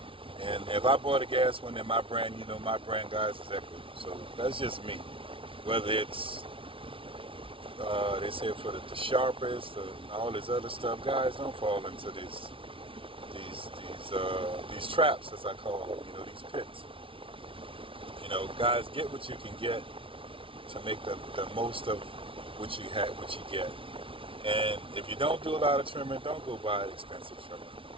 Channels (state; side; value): late; left; 0.25 ms